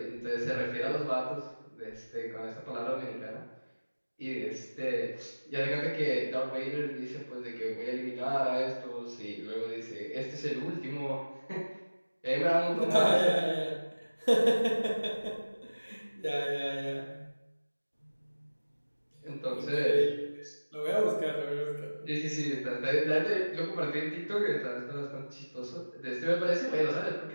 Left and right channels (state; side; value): inverted; both; correlation -1.00